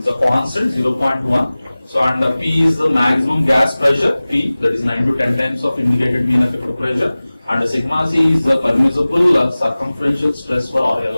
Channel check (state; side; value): inverted; both; correlation -0.98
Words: a constant 0.1. So and P is the maximum gas pressure, P, that is 9 to 10 times of indicated mean effective pressure, and sigma C is the permissible circumferential stress for, or